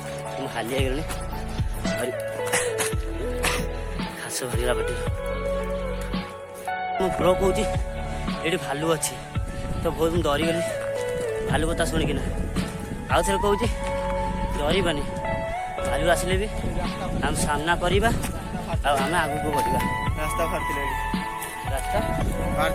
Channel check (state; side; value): identical; both; correlation 1.00